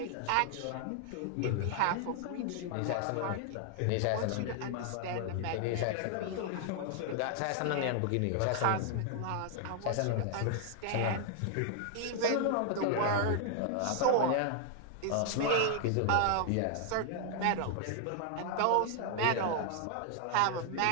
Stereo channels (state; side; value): different; both; correlation 0.00